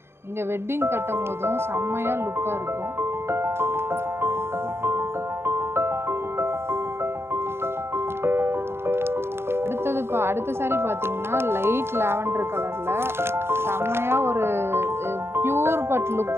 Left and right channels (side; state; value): left; late; 0.12 ms